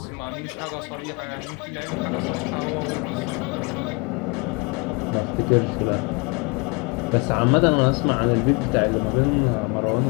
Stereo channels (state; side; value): quieter; right; 30.2 dB